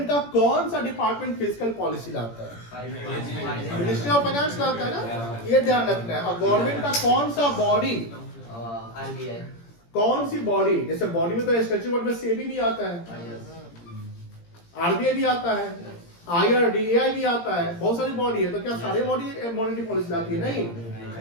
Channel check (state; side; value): late; right; 17 ms